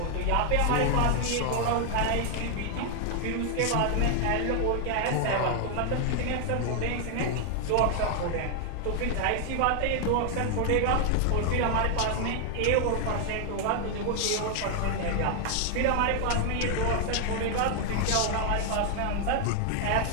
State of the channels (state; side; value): different; both; correlation 0.00